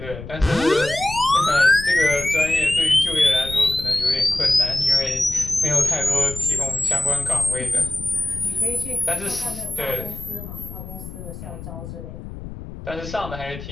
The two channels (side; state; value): left; noise; rumble, 11 dB below the sound